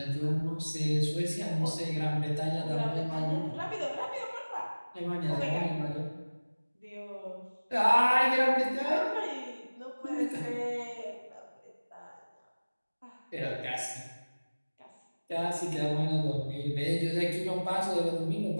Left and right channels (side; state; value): both; inverted; correlation -1.00